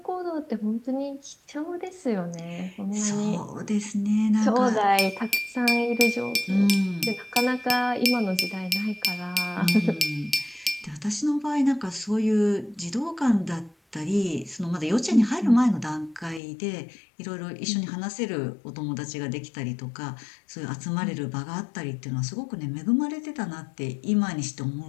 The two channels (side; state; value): right; drops out; at 16.4 s